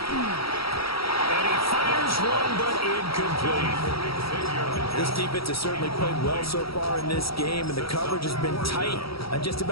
And This defense has certainly played well so far in this game, and the coverage has been tight on just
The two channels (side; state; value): right; late; 0.75 ms